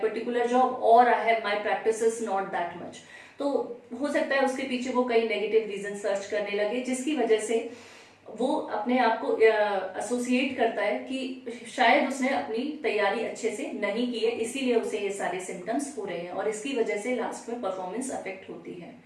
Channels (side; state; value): both; identical; correlation 1.00